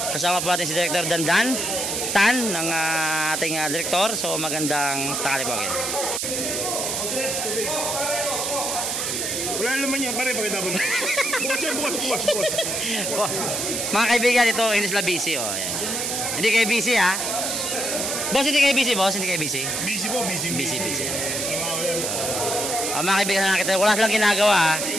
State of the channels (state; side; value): noise; right; hiss, 1 dB below the sound